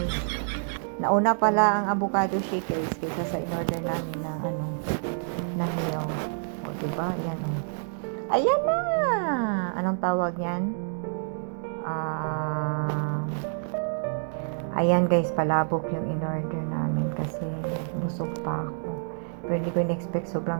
Nauna pala ang avocado shake, guys, kaysa sa in-order namin na na hiyaw. Diba? Ayan, ayan na! Anong tawag yan? Ayan, guys, palabok yung in-order namin kasi busog pa ako. Pero hindi ko in-expect,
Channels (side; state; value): left; silent; digital silence